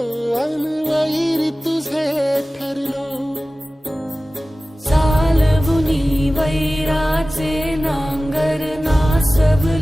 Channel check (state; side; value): normal; both; correlation 0.96